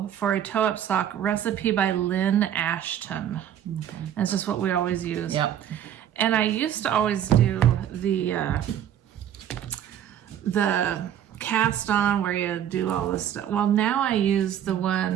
for a toe-up sock recipe by Lynn Ashton. Okay. That's just what we always use. Yep. And I used to always do the cast on where you do all this stuff. Well, now I use the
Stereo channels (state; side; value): quieter; left; 10.3 dB